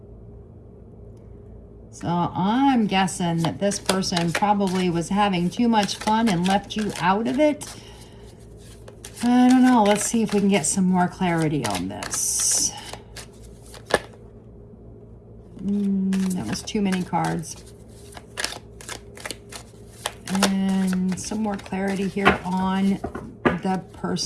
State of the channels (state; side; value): identical; both; correlation 1.00